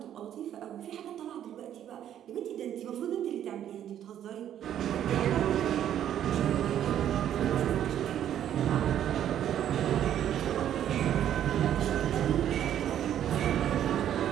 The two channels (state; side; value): quieter; left; 10.6 dB